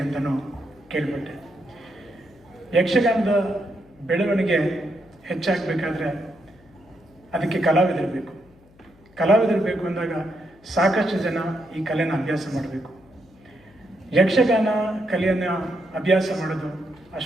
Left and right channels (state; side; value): noise; left; hum, 28 dB below the sound